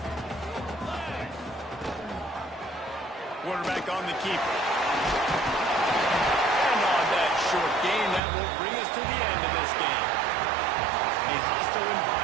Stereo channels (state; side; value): drops out; left; at 8.2 s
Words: Quarterback on the keeper. And on that short gain, that will bring us to the end of this game. A hostile